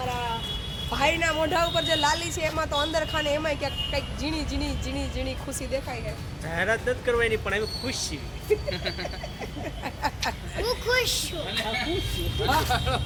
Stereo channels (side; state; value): both; identical; correlation 1.00